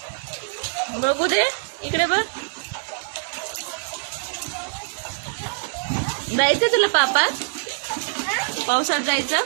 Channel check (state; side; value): silent; left; digital silence